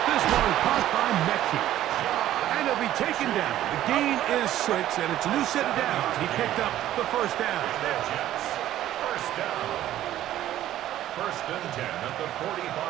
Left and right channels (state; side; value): quieter; left; 13.0 dB